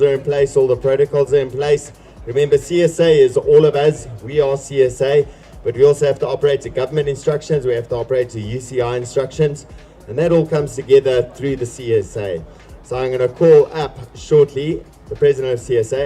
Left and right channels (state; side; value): identical; both; correlation 1.00